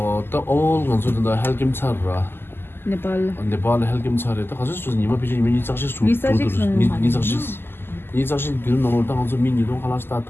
딱 건설된다 헬김 차라 Nepal. 네팔 헬김 차래 딱 가서 좀 이마 비지 이미 작시 수 니 작시 기름 넘을 때 가서 미니도 하나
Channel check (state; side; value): late; right; 0.11 ms